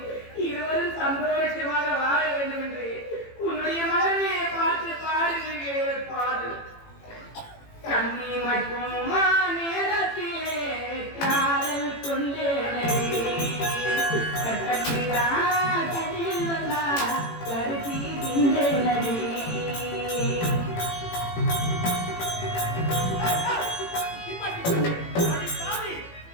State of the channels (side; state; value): right; late; 18 ms